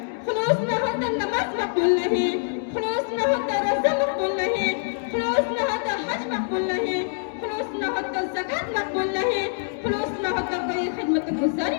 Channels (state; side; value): silent; right; 62 dB below the other